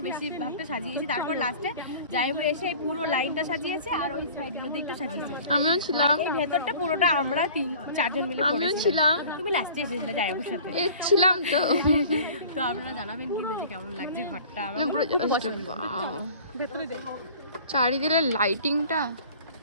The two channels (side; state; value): both; inverted; correlation -0.45